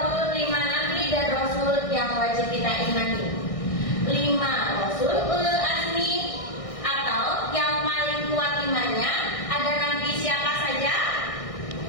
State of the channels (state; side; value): late; right; 1.6 ms